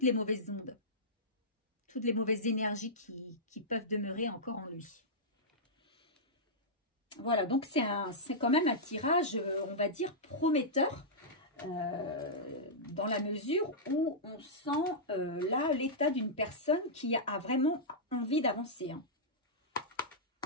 les mauvaises ondes, toutes les mauvaises énergies qui peuvent demeurer encore en lui. Voilà, donc c'est quand même un tirage, on va dire, prometteur, dans la mesure où on sent là l'état d'une personne qui a vraiment envie d'avancer. Hein.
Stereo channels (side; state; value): both; normal; correlation -0.12